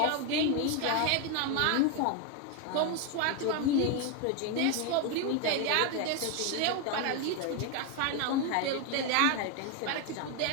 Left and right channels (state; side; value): different; both; correlation 0.01